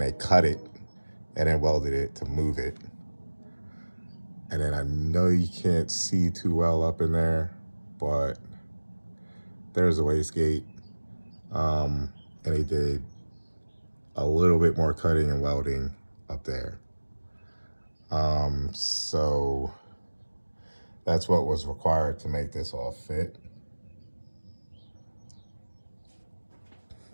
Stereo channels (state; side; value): inverted; both; correlation -1.00